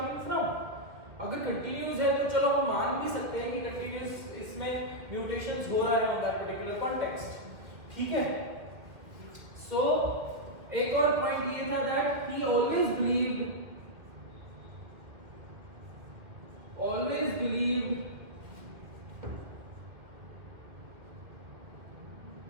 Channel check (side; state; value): left; late; 2.2 ms